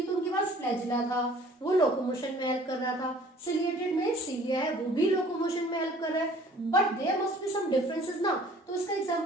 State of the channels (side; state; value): both; normal; correlation 0.52